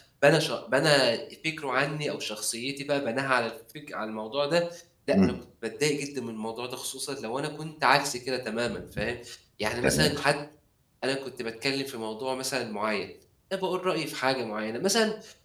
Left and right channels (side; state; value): both; identical; correlation 1.00